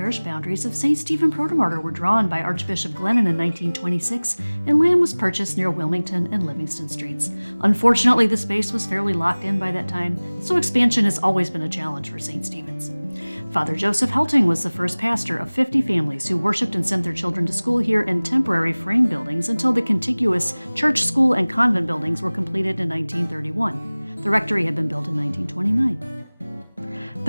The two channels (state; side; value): inverted; both; correlation -1.00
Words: boundaries of St. Stephen Protomartyr were drawn by Archbishop Glennon in 1926, and land was purchased near Wilmington and Livingston Streets. Unfortunately, the space was fairly locked in by that time, so expansion has always been a challenge for St. Stephen's. Father Joseph Helting was the first pastor of 50 families who worshiped and sent their children to school here in temporary frame buildings until the contiguous church, school, and convent buildings were completed in 1931. The rectory had been built in 1929.